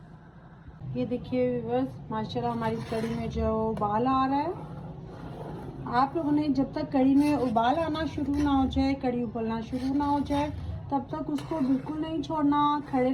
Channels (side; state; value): both; identical; correlation 1.00